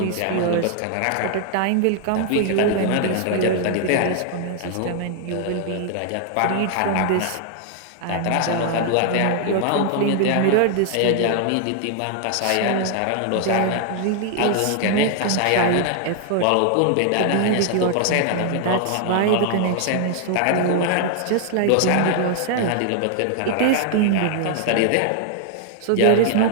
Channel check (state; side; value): different; both; correlation 0.00